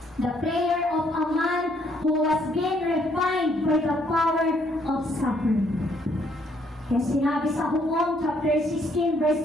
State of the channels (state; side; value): normal; both; correlation 0.68